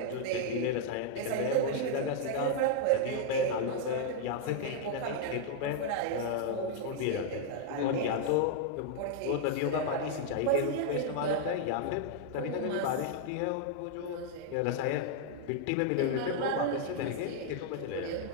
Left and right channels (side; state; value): both; different; correlation -0.01